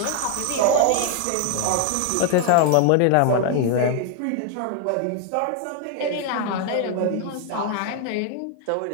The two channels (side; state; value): both; different; correlation 0.00